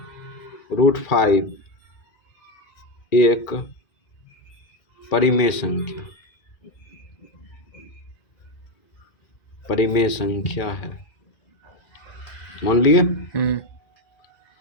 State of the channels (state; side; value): late; right; 2.4 ms